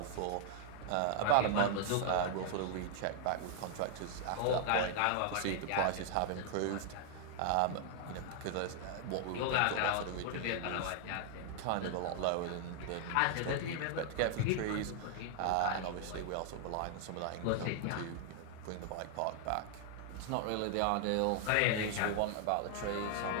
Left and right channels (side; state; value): both; different; correlation 0.00